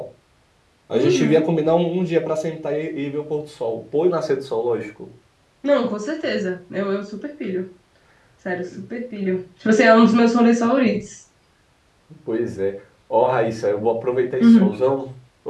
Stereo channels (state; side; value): identical; both; correlation 1.00